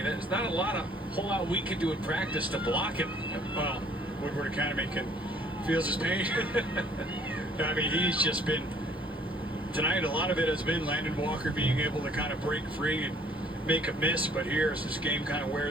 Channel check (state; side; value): normal; both; correlation 0.59